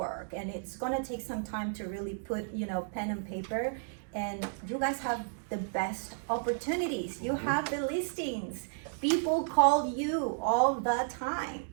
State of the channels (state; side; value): silent; left; digital silence